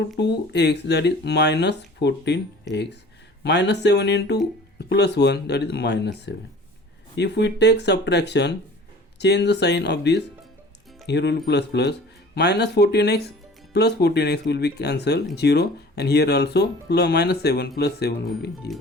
2x, that is minus 14x. Minus 7 into plus 1, that is minus 7. If we take subtraction, change the sign of this, here will be plus plus. Minus 14x plus 14x will be cancelled, 0, and here also plus minus 7 plus 7 will be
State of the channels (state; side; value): normal; both; correlation 0.45